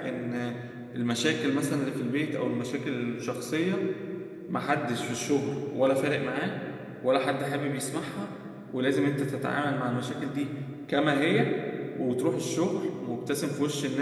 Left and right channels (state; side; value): identical; both; correlation 1.00